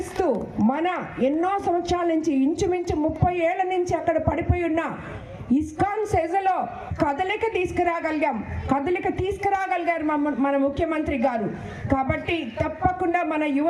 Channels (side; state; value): both; identical; correlation 1.00